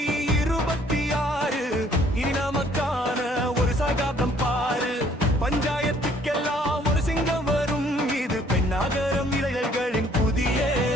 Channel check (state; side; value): normal; both; correlation 0.61